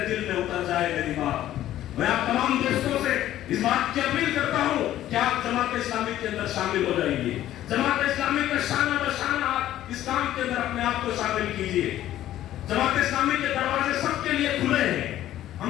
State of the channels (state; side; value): quieter; right; 13.1 dB